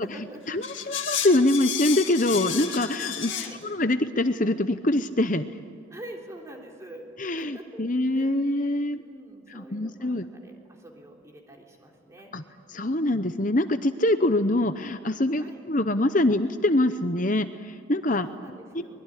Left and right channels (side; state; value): both; normal; correlation 0.54